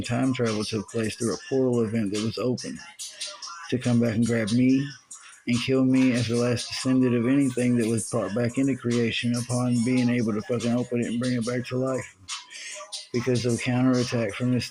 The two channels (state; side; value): identical; both; correlation 1.00